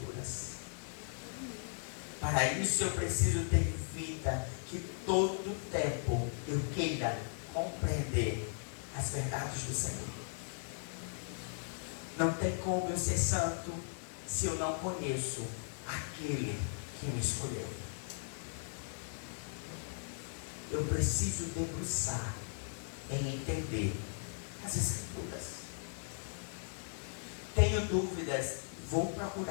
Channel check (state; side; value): silent; right; 53 dB below the other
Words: Para isso eu preciso ter vida que todo tempo eu queira compreender as verdades do Senhor. Não tem como eu ser santo se eu não conheço aquele que me escolheu. Eu preciso debruçar em entender as Escrituras. Tenho dúvidas, vou